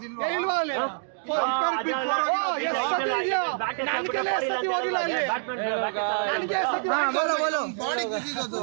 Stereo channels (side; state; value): left; silent; digital silence